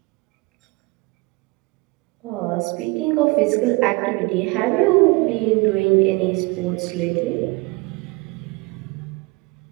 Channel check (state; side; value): quieter; left; 25.4 dB